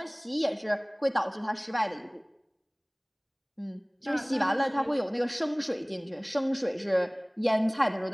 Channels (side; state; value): both; identical; correlation 1.00